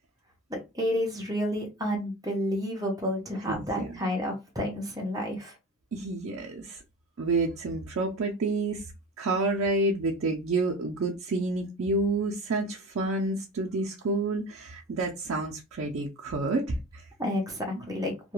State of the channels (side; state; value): both; normal; correlation 0.34